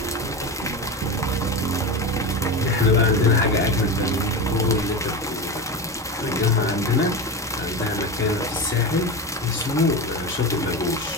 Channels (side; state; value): both; normal; correlation 0.22